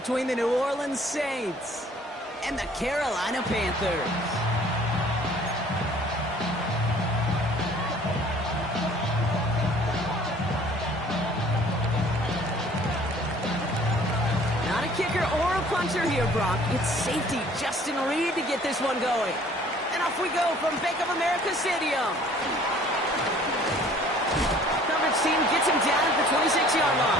the New Orleans Saints and the Carolina Panthers. Not a kicker or a puncher here, Brock. It's safety Justin Reed to get this one going. And off we go from Bank of America Stadium. Coverage team gets him down at the 26-yard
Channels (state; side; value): normal; both; correlation 0.54